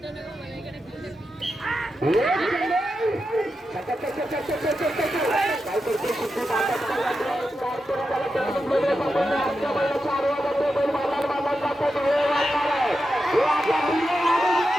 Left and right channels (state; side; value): normal; both; correlation 0.89